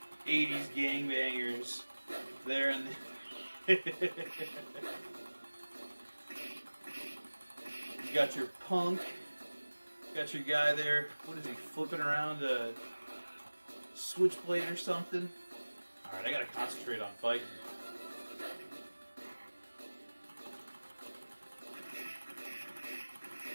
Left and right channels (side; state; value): both; inverted; correlation -1.00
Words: 80s gangbangers there in the You got your punk, got your guy there, what is he, flipping around a switchblade or something? Alright, I gotta concentrate on fighting.